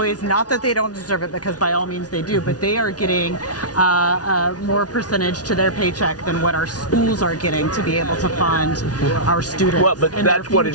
not that they don't deserve it, because by all means they do, but they are getting more percentage to their paycheck than what our schools are getting to be able to fund our students. Well, but and their that's what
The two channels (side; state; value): right; late; 0.69 ms